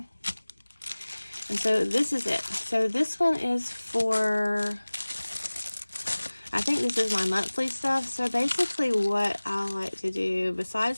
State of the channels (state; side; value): inverted; both; correlation -1.00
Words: And so this is it. So this one is for, I think this is my monthly stuff. So basically what I like to do,